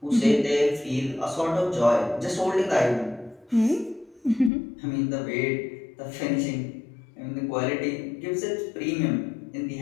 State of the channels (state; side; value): drops out; right; at 4.5 s